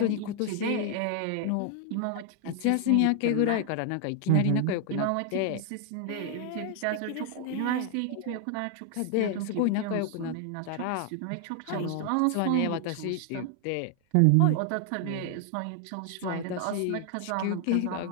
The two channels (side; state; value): both; different; correlation 0.00